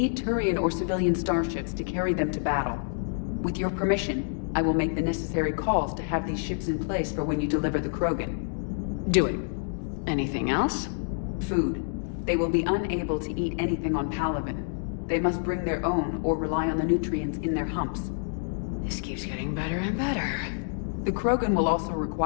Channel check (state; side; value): silent; right; digital silence